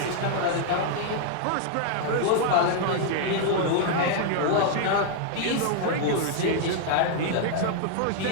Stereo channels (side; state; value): both; different; correlation 0.00